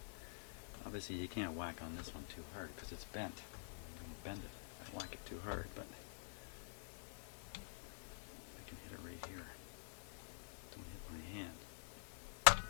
Obviously you can't whack on this one too hard because it's bent. I'm going to bend it if I whack it too hard, but I can hit it right here. Don't hit my hand.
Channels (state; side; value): silent; right; digital silence